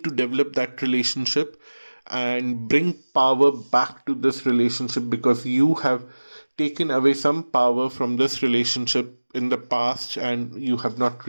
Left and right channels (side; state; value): both; inverted; correlation -1.00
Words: to develop that relationship and bring power back to this relationship, because you have taken away some power from this relationship in the past, and you have not